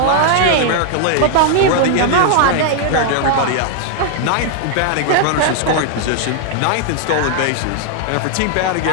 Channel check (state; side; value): different; both; correlation 0.00